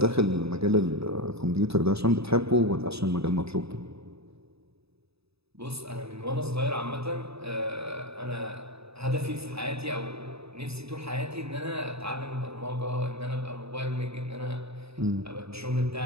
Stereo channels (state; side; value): late; left; 0.78 ms